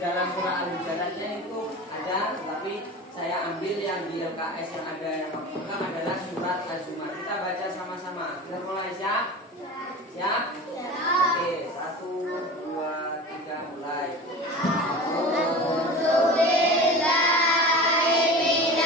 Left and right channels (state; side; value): normal; both; correlation 0.33